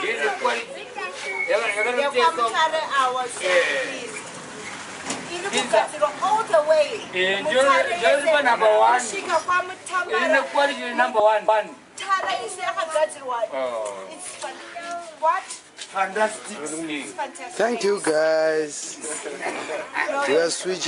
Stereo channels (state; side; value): identical; both; correlation 1.00